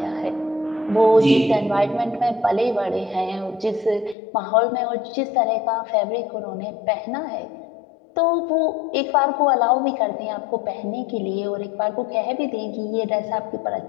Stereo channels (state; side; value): drops out; right; at 4.2 s